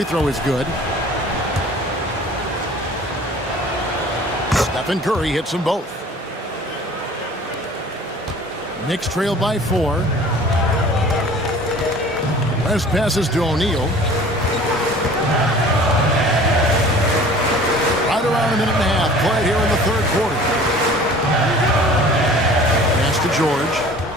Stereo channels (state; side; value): normal; both; correlation 0.46